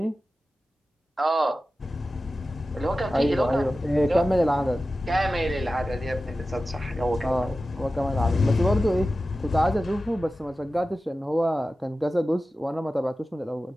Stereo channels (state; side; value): normal; both; correlation 0.94